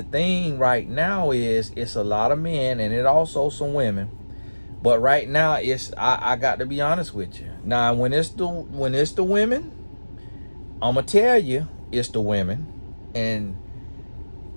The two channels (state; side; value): inverted; both; correlation -1.00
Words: thing right now is it's a lot of men and it also some women. But right now it's I got to be honest with you. Now when it's the women, I'ma tell you it's the women, and